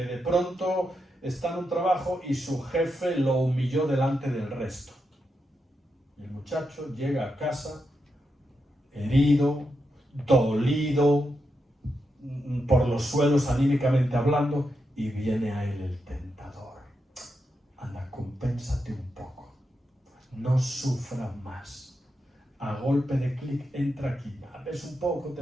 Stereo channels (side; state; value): both; normal; correlation 0.85